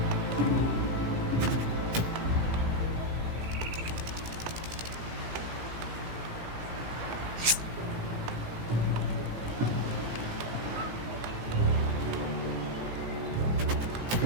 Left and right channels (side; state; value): left; late; 17 ms